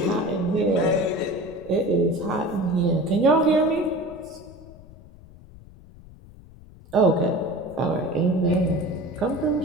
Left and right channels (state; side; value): noise; left; rumble, 21 dB below the sound